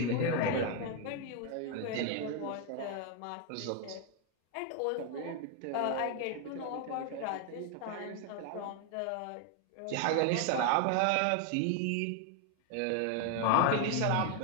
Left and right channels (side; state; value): both; different; correlation 0.01